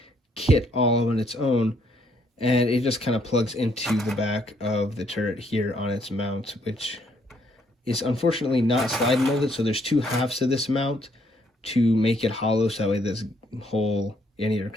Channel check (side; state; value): both; normal; correlation 0.70